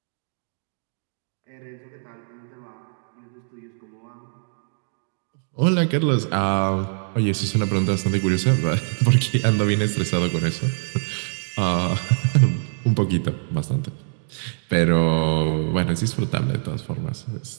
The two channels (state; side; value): silent; left; digital silence